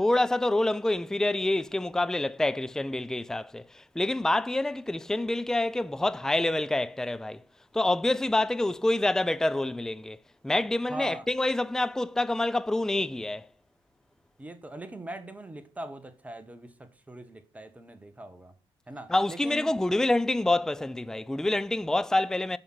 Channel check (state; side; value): normal; both; correlation 0.96